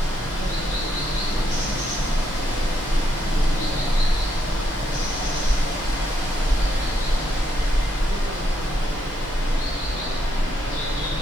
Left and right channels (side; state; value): both; normal; correlation 0.76